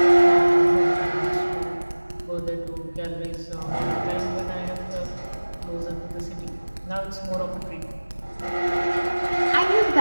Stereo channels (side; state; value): both; inverted; correlation -1.00